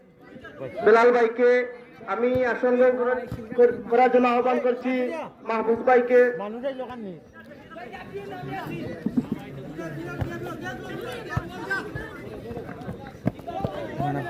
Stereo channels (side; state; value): both; identical; correlation 1.00